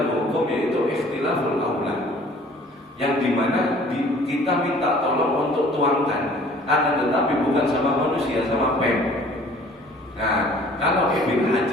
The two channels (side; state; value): both; normal; correlation 0.52